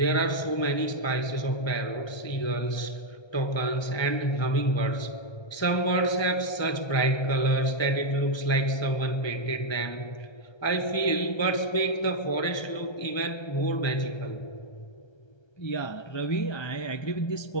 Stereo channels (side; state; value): right; late; 1.3 ms